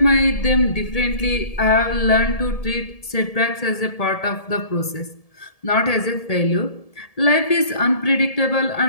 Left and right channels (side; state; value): right; late; 1.7 ms